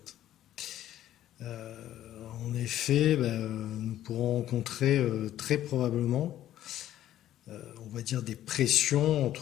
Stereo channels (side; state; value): right; quieter; 12.6 dB